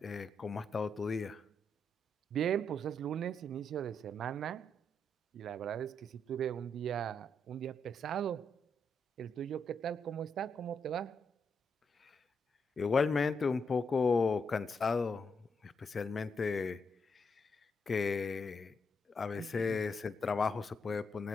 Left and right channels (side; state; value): both; normal; correlation 0.80